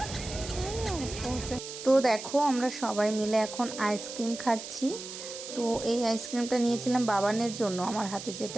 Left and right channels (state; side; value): noise; right; hiss, 10 dB below the sound